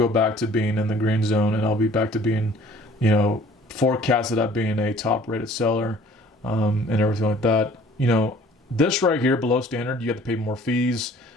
back to being in the green zone, and I'll be back to being, forecasted at being a top-rated seller, and everything like that. This right here below standard, you have to pay more fees.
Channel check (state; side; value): normal; both; correlation 0.53